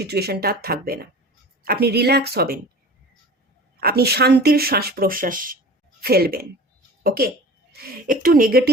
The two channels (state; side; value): normal; both; correlation 0.39